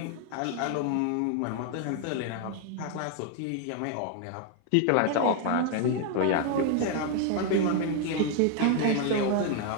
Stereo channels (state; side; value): different; both; correlation 0.00